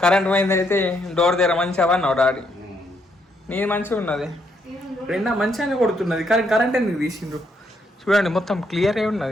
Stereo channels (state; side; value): normal; both; correlation 0.74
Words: కరెంట్ పోయింది అయితే డోర్ దగ్గర మంచిగా అన్నావు డాడీ నీ మంచిగా ఉన్నది రెండా మంచిగానే కొడుతున్నది కానీ కరెంట్ ఎందుకు తీసిండ్రు చూడండి మొత్తం క్లియర్ అయి